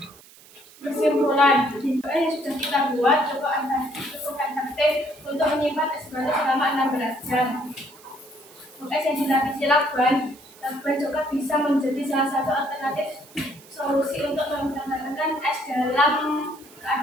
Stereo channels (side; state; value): right; noise; hiss, 23 dB below the sound